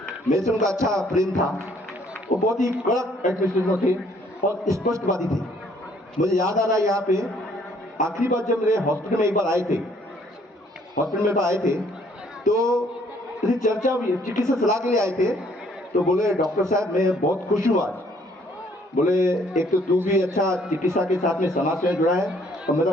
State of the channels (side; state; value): both; normal; correlation 0.63